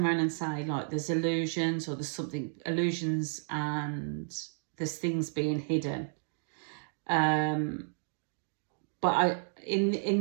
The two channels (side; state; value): left; silent; digital silence